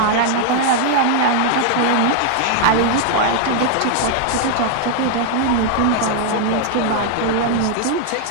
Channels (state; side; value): different; both; correlation 0.00